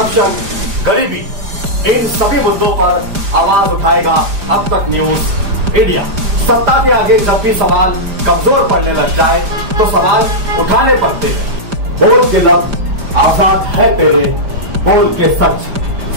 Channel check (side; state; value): left; late; 5.0 ms